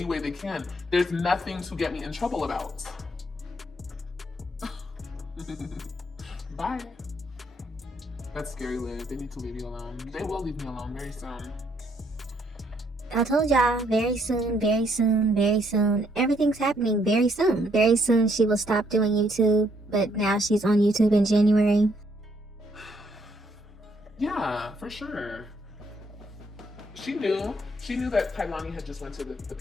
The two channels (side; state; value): both; normal; correlation 0.70